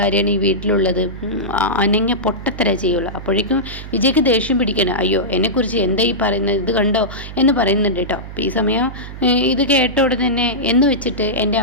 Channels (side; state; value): right; noise; hum, 12 dB below the sound